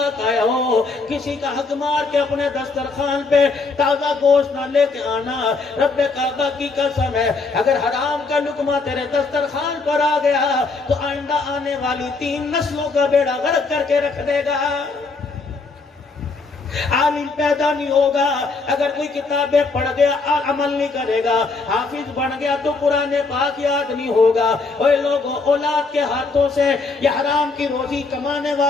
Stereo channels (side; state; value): right; quieter; 4.0 dB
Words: آیا ہو، کسی کا حق مار کے اپنے دسترخوان پہ تازہ گوشت نہ لے کے آنا۔ رب کعبہ کی قسم ہے اگر حرام کا لقمہ تیرے دسترخوان پر آ گیا تو آئندہ آنے والی 3 نسلوں کا بیڑا غرق کر کے رکھ دے گا۔ عالم پیدا نہیں ہوگا اگر کوئی کتابیں پڑھ گیا عمل نہیں کرے گا، حافظ بن گیا تو قرآن پاک یاد نہیں ہوگا۔ اوے لوگوں، اولاد کے ہاتھوں سے یہ حرام کی روزی کمانے